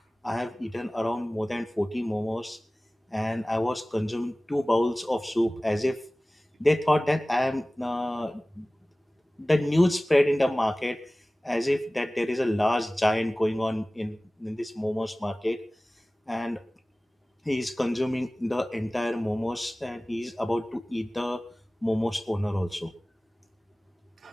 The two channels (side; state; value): both; normal; correlation 0.98